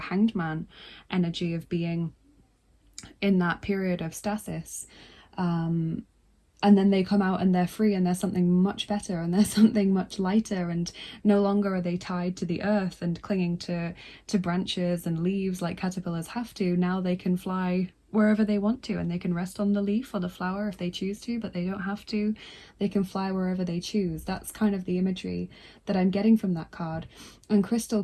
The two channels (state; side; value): identical; both; correlation 1.00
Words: Man energy of being in that period of stasis. And then they come out and they're free, and there's something much better, and there's something much lighter, and no longer are they tied to the earth and clinging to branches and leaves like caterpillars have to. Now they can fly wherever they want to, and they can rest on the leaf or the flower if they choose to, but they don't have to. They can fly wherever they choose. That's kind of the imagery that I'm getting from that card. And